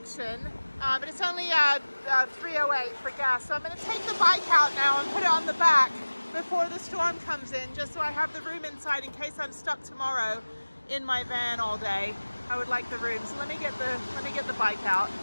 but it's only $3.08 for gas, so I'm going to take the bike out now and put it on the back before the storm comes in, just so I have the room inside in case I'm stuck tomorrow in my van all day. I would like the room, so let me get the bike out.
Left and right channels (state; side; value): inverted; both; correlation -1.00